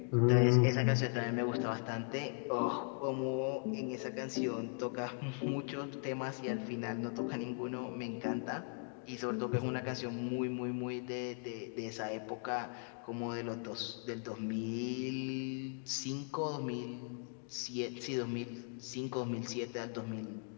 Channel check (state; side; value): silent; right; 52 dB below the other